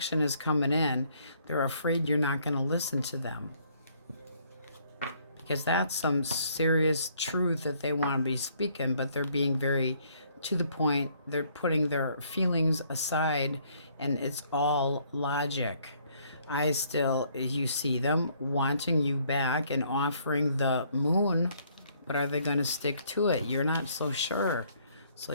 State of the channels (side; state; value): both; inverted; correlation -0.65